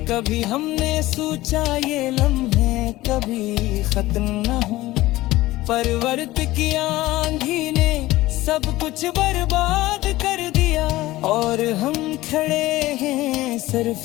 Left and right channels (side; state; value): right; quieter; 17.5 dB